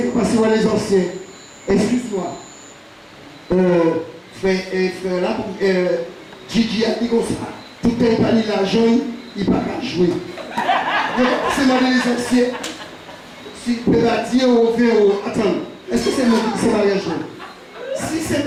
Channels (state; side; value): identical; both; correlation 1.00